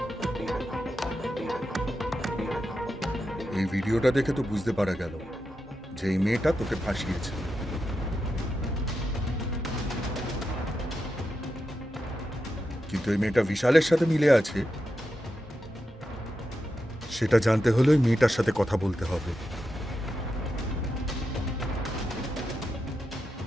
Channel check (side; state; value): both; normal; correlation 0.88